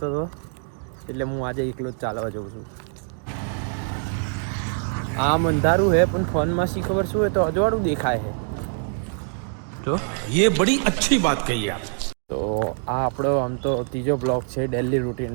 હતો, એટલે હું આજે એકલો જ ચાલવા જાઉં છું. આમ અંધારું હે પણ ફોનમાં શી ખબર શું હોય તો અજવાળું દેખાય છે. જો ये बड़ी अच्छी बात कही आप. તો આ આપણો આમ તો ત્રીજો બ્લોગ છે ડેલી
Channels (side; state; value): left; silent; 57 dB below the other